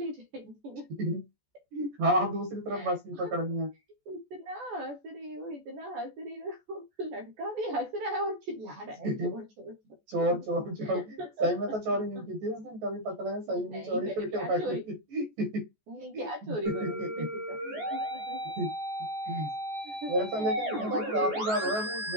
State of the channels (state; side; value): late; left; 14 ms